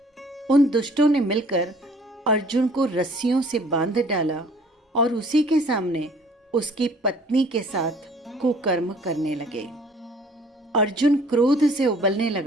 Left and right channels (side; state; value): both; normal; correlation 0.55